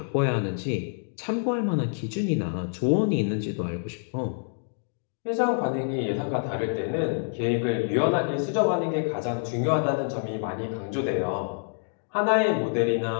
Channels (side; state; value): right; silent; digital silence